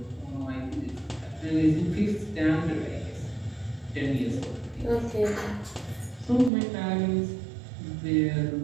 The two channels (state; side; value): drops out; left; at 6.5 s